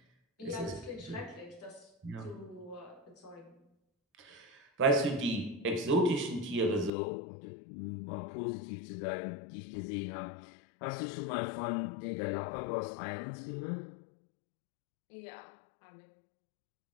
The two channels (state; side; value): drops out; right; at 6.9 s